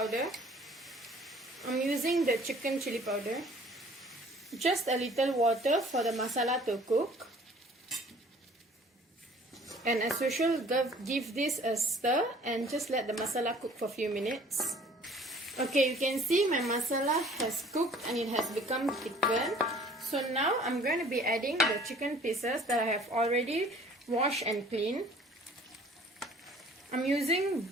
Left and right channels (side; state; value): both; normal; correlation 0.52